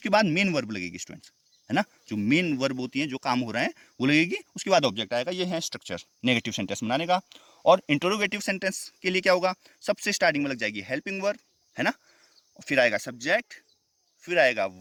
बाद मेन वर्ब लगेगी स्टूडेंट्स, है ना। जो मेन वर्ब होती है, जो काम हो रहा है वो लगेगी, उसके बाद ऑब्जेक्ट आएगा। ये है स्ट्रक्चर नेगेटिव सेंटेंस बनाने का। और इंटरोगेटिव सेंटेंस के लिए क्या होगा, सबसे स्टार्टिंग में लग जाएगी हेल्पिंग वर्ब, है ना, फिर आएगा सब्जेक्ट, फिर आएगा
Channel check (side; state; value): both; identical; correlation 1.00